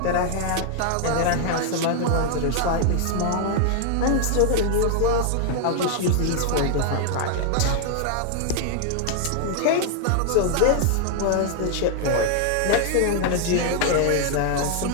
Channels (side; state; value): both; different; correlation 0.00